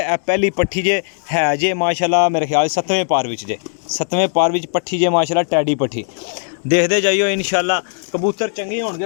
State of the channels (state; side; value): silent; right; digital silence